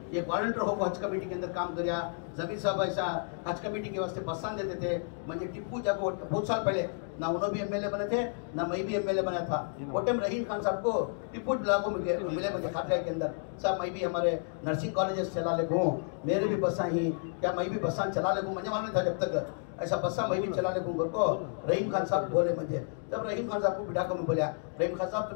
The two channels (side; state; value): right; silent; 57 dB below the other